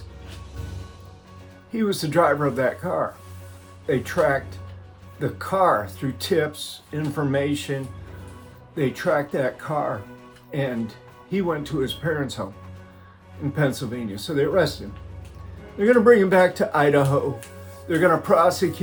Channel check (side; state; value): both; identical; correlation 1.00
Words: he was the driver of that car. They tracked the car through tips, information. They tracked that car, and he went to his parents' home in Pennsylvania. So they arrested him. They're going to bring him back to Idaho. They're going to